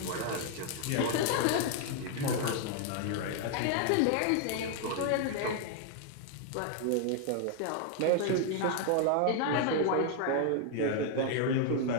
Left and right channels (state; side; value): different; both; correlation 0.00